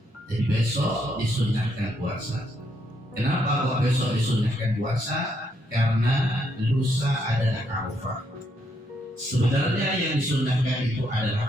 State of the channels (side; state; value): both; normal; correlation 0.75